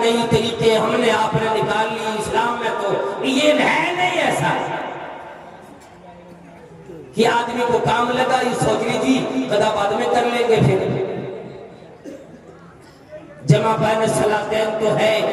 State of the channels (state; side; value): identical; both; correlation 1.00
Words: طریقے ہم نے آپ نے نکال لی اسلام میں, تو یہ ہے نہیں ایسا کہ آدمی کو کام لگا یہ سوچ لیجیے قضا بعد میں کر لیں گے. پھر جمع بین الصلاتین تو ہے,